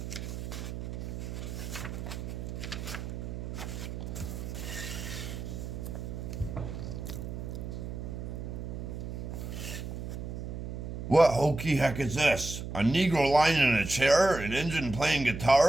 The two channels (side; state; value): right; noise; hum, 6 dB below the sound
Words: What hokey heck is this? A Negro lying in a chair, an Injun playing